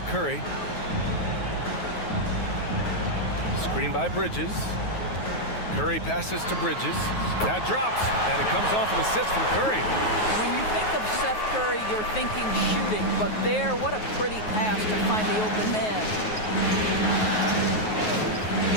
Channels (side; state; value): right; late; 9.4 ms